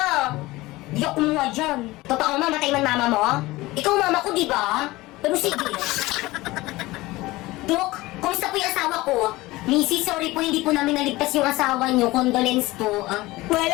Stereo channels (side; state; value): right; quieter; 19.6 dB